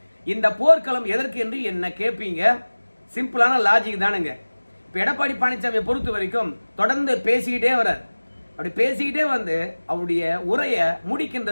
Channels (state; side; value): inverted; both; correlation -1.00